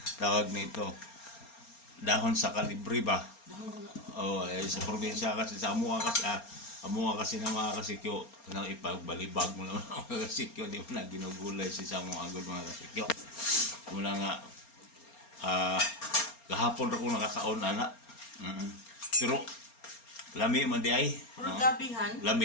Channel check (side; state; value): right; late; 4.3 ms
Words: tawag nito, dahon sa kalibre ba? Sa probinsya kasi, sa Amuha kasi na mga kasikyo, nang ipagbalibag mo naman mga kasikyo, di mo na ginugulay si Samo Agod mga kasikyo. Mula nga, kahapon ako nakakaon ana. Pero, lami man di ay. Oragabihan?